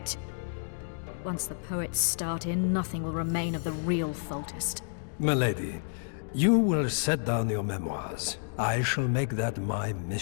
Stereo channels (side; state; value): right; silent; digital silence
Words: Once the poets start in, nothing will remain of the real Foltest. Milady, you will set down your memoirs. I shall make that my